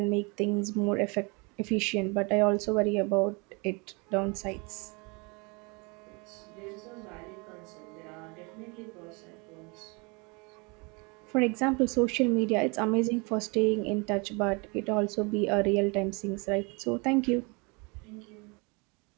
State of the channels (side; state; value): left; quieter; 29.6 dB